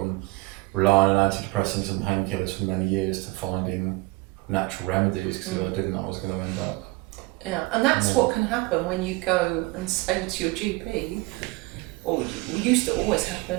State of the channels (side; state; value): left; quieter; 23.2 dB